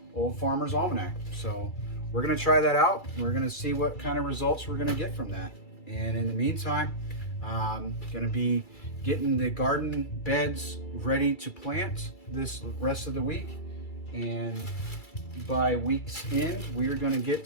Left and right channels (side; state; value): right; late; 2.3 ms